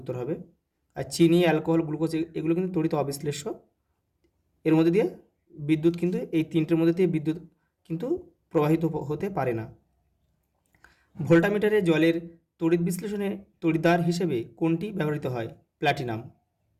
উত্তর হবে। আর চিনি, অ্যালকোহল, গ্লুকোজ এগুলো কিন্তু তড়িৎ অবিশ্লেষ্য। এর মধ্যে দিয়ে বিদ্যুৎ কিন্তু, এই তিনটের মধ্যে দিয়ে বিদ্যুৎ কিন্তু প্রবাহিত হতে পারে না। ভোল্টামিটারে জলের তড়িৎ বিশ্লেষণে তড়িৎদ্বার হিসেবে কোনটি ব্যবহৃত হয়? প্ল্যাটিনাম।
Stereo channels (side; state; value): both; identical; correlation 1.00